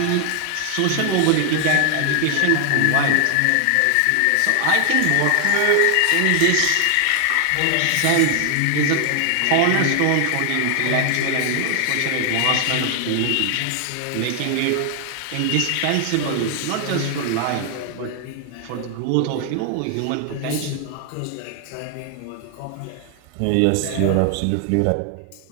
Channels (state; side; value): different; both; correlation 0.00